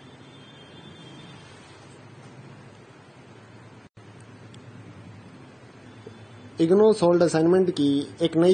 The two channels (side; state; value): both; identical; correlation 1.00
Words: IGNOU solved assignment की एक